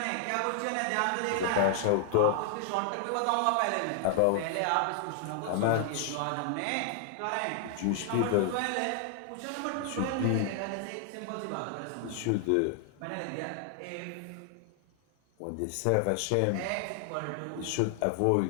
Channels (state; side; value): different; both; correlation 0.00